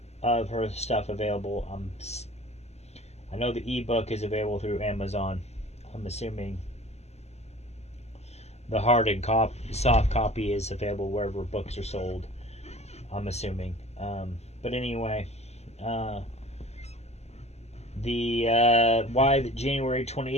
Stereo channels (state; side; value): late; right; 0.31 ms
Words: of her stuff available. I know the ebook is available through Amazon. I'm assuming the hard and soft copy is available wherever books are sold. I'm assuming. But anyway, why the January